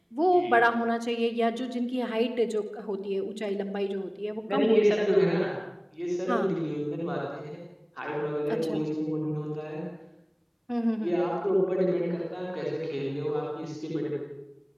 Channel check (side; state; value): both; identical; correlation 1.00